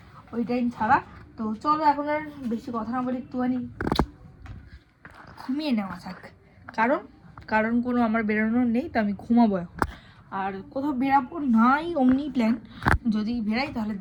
ওই টাইম ছাড়া তো চলো এখন আর বেশি কথা না বলে একটুখানি ঘুমিয়ে নেওয়া থাক, কারণ কোনো আমার বেরোনোর নেই, তো আমি ঘুমাবো এখন। আর কোথাও বেরাবো নাই অমনি প্ল্যান, যদি বেরাই তাহলে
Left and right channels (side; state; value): both; identical; correlation 1.00